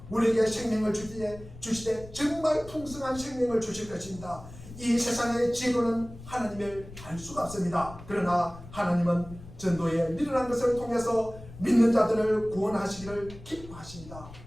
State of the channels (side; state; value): left; noise; rumble, 16 dB below the sound